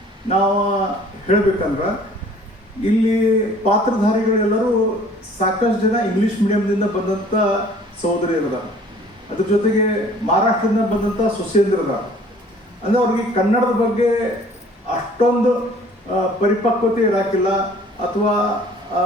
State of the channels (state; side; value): normal; both; correlation 0.53